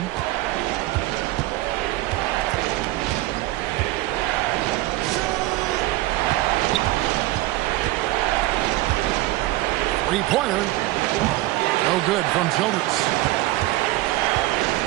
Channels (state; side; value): quieter; left; 17.6 dB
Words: Three-pointer. No good from Childress.